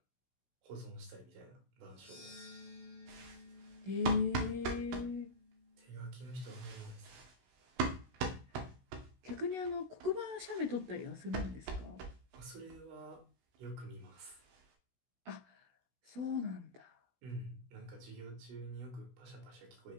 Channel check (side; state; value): left; late; 16 ms